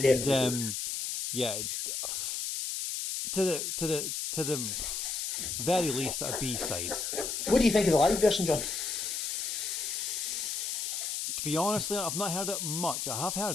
it's to the very least a B-side. What do you think of the live version, John? To be honest, I've not heard it much. I have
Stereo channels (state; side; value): noise; left; hiss, 2 dB below the sound